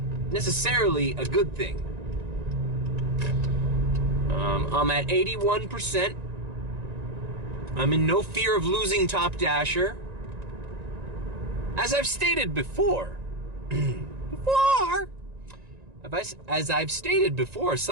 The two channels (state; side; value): late; left; 1.9 ms